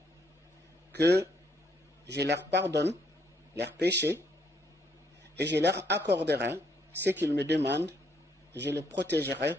que je leur pardonne leurs péchés et je leur accorderai ce qu'ils me demandent, je les protégerai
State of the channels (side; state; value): both; normal; correlation 0.71